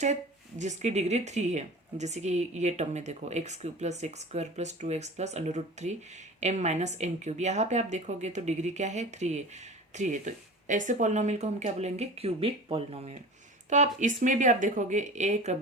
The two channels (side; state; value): both; normal; correlation 0.36